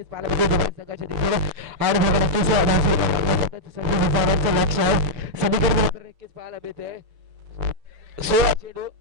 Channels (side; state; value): left; late; 6.9 ms